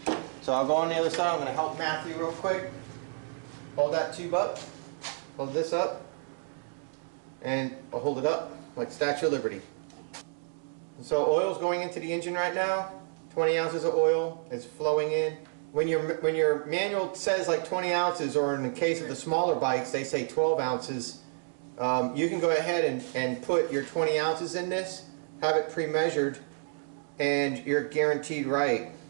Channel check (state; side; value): silent; left; 58 dB below the other